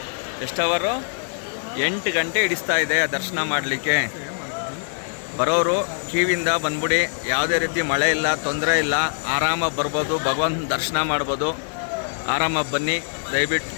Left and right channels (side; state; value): right; silent; 63 dB below the other